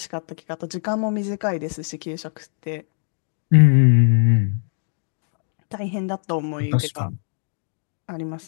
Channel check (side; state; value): right; silent; digital silence